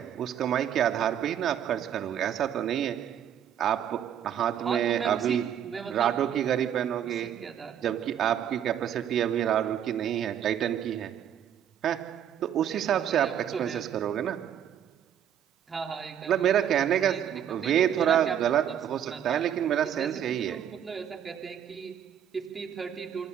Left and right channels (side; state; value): left; quieter; 9.6 dB